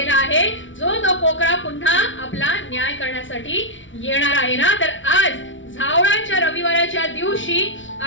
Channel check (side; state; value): right; late; 0.56 ms